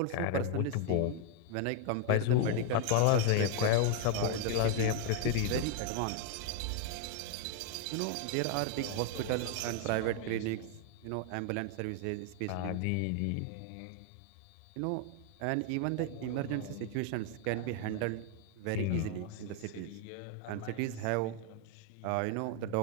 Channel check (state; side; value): different; both; correlation 0.00